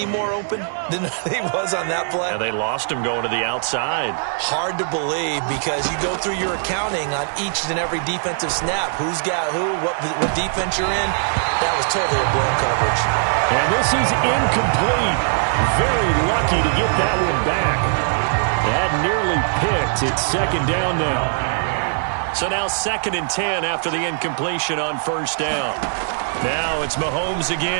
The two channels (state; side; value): silent; left; digital silence